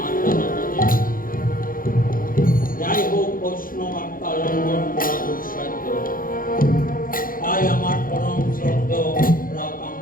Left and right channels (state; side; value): late; right; 0.41 ms